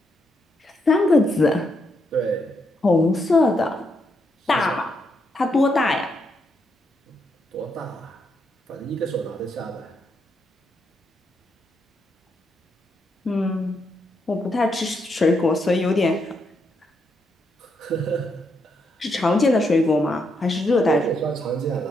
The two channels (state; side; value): normal; both; correlation 0.79